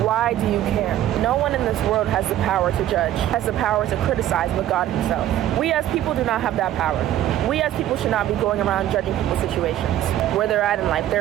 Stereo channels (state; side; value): quieter; left; 12.6 dB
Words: Why do you care? No one in this world has the power to judge, has the power to criticize but God himself. We as people do not have that power. We as people should not be going around judging people's situations, where they're at in life,